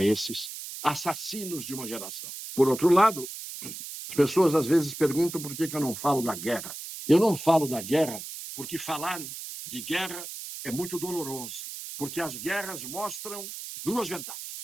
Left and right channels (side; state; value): right; noise; hiss, 9 dB below the sound